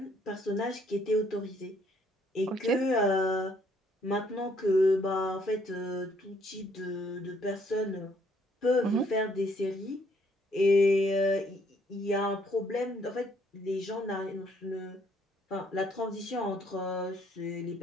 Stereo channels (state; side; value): normal; both; correlation 0.66